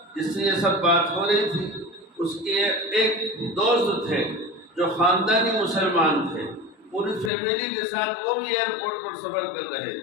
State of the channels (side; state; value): right; drops out; at 7.3 s